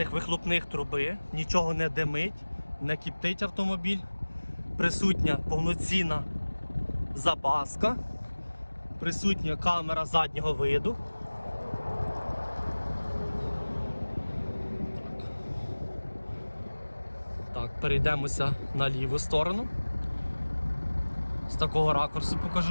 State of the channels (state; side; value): inverted; both; correlation -1.00